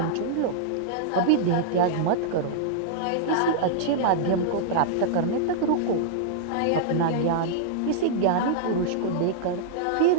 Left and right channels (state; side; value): different; both; correlation -0.02